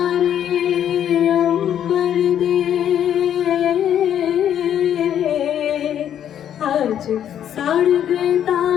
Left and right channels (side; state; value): right; quieter; 9.9 dB